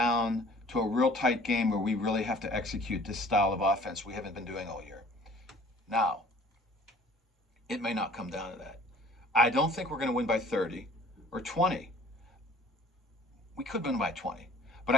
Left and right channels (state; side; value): normal; both; correlation 0.51